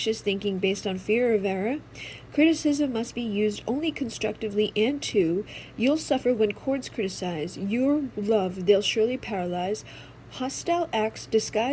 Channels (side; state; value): both; identical; correlation 1.00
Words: thinking based on fear of error. Criticism must be used only constructively, and 2, you'll suffer when courts criticize. Your love they'll surely paralyze. Hostile acts